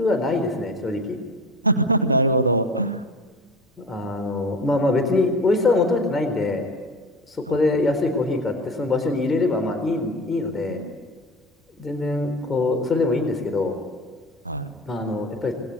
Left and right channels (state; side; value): normal; both; correlation 0.34